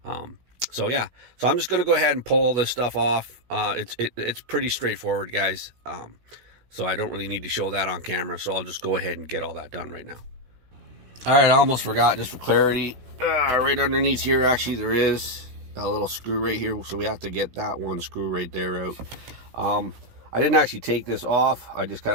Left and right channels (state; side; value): late; left; 16 ms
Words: So yeah, so I'm just going to go ahead and pull all this stuff off. It's pretty straightforward, guys. So I don't really need to show that on camera, so I'll just go ahead and get all that done right now. All right, I almost forgot, just for clarity, right underneath here, actually, there is a little screw right here, so we have to get that one screw right there out. I didn't actually take this off. I just